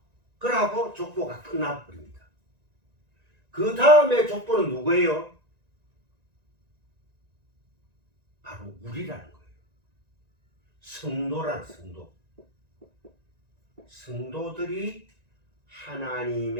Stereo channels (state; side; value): late; left; 1.9 ms